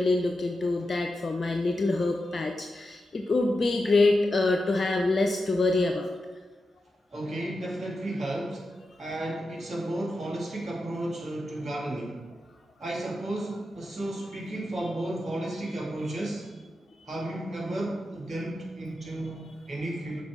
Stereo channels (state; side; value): normal; both; correlation 0.89